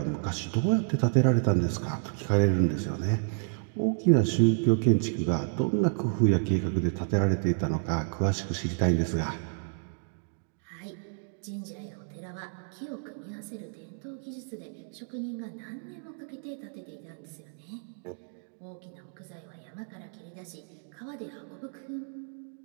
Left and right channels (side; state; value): left; silent; digital silence